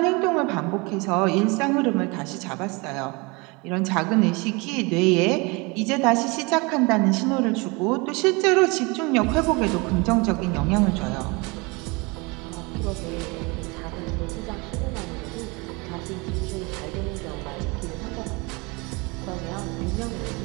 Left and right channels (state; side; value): quieter; left; 27.3 dB